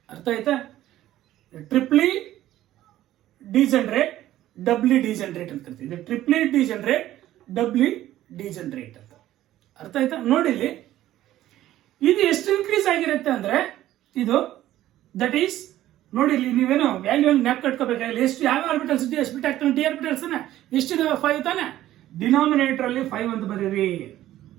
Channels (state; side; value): quieter; left; 13.9 dB